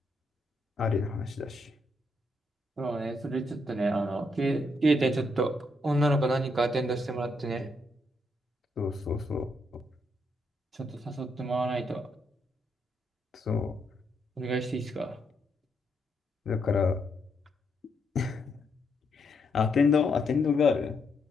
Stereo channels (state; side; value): normal; both; correlation 0.77